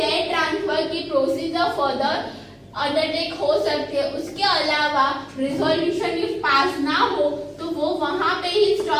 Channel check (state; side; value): identical; both; correlation 1.00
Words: ट्रांसफर की प्रोसीजर फर्दर अंडरटेक हो सकते हैं. उसके अलावा रिजोल्यूशन इफ पास ना हो तो वो वहां पे ही